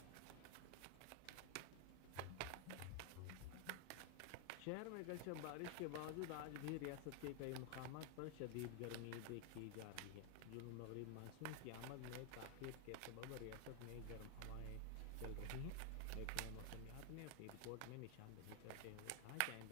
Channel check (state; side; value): different; both; correlation 0.00